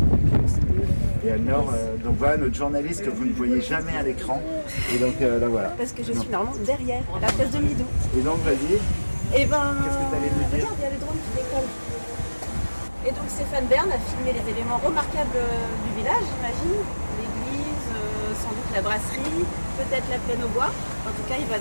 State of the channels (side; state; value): both; inverted; correlation -1.00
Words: Et alors, donc voilà notre journaliste que vous ne voyez jamais à l'écran. Et donc là voilà. Parce que je suis normalement derrière, la place de Midou. Et donc vas-y. Et ben, qu'est-ce que tu allais nous dire? Regarde, il y a les drones qui décollent. Et donc Stéphane Bern a filmé les éléments remarquables du village, j'imagine. L'église, sans doute la brasserie, peut-être la plaine aux bois. En tout cas, il va